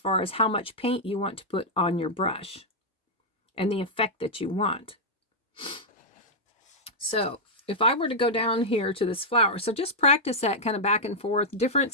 as how much paint you want to put on your brush and the effect that you want. So if I were to go down here to this flower, so just practice that kind of back and forth, different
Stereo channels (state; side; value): normal; both; correlation -0.05